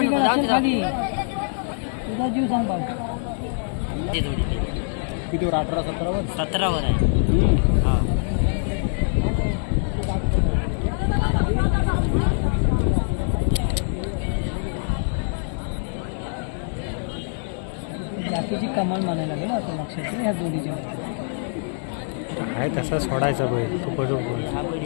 जाऊ असेल दे. खाली. तुझा जीव सांभाळ. कितीवर 18-17 17 आहे. हा. जातीची कमाल म्हणायला लागेल आता लक्षात ठेव ह्या जोडीच्या. आहे तसा सोडायचा बैल तो पडू बोल. हा बैल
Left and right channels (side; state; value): right; silent; 63 dB below the other